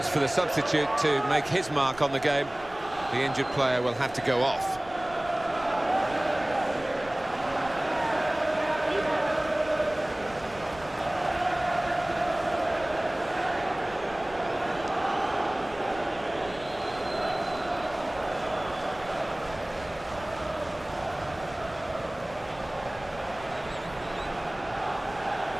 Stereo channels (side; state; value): right; noise; rumble, 20 dB below the sound